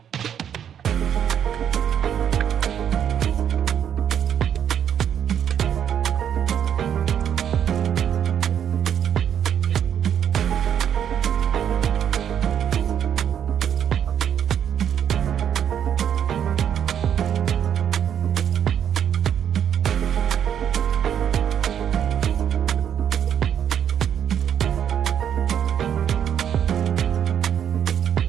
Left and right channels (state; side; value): quieter; left; 9.1 dB